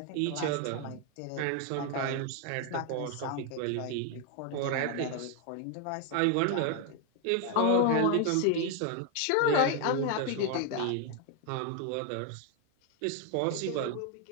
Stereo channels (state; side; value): different; both; correlation 0.00